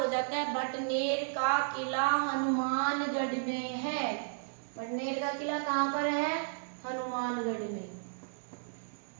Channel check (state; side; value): silent; left; digital silence